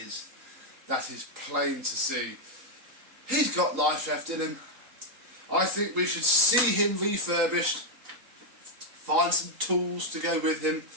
that is plain to see. He's got life left in him. I think we should see him refurbished, find some tools to go with him,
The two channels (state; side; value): late; left; 3.8 ms